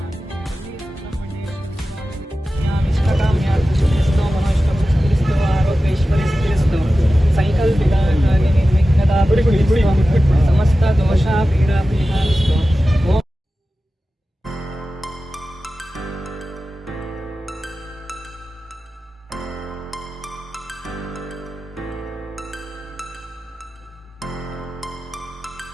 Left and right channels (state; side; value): normal; both; correlation 0.95